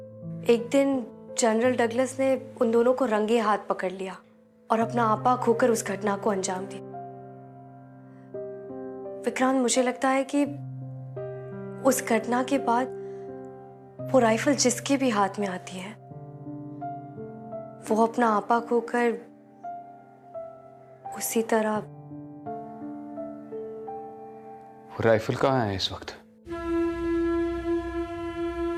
एक दिन जनरल डगलस ने उन दोनों को रंगे हाथ पकड़ लिया और अपना आपा खोकर उस घटना को अंजाम दिया। विक्रांत, मुझे लगता है कि उस घटना के बाद वो राइफल जिसके भी हाथ में आती है वो अपना आपा खोकर उसी तरह। वो राइफल कहाँ है इस वक्त?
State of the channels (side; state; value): both; identical; correlation 1.00